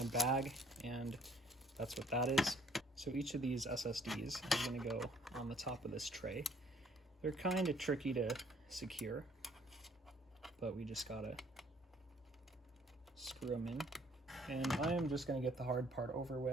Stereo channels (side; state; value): both; normal; correlation 0.61